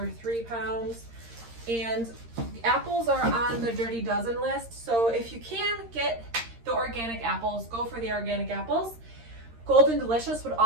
3 pounds. And apples are on the Dirty Dozen list. So if you can get the organic apples, go for the organic apples. Golden Delicious would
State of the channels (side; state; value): left; late; 13 ms